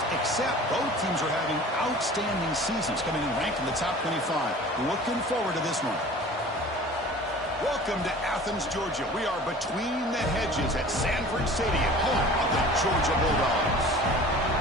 except both teams are having outstanding seasons, coming in ranked in the top 25. Looking forward to this one. Welcome to Athens, Georgia. We are between the hedges at Sanford Stadium, home of the Georgia Bulldogs.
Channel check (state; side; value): normal; both; correlation 0.43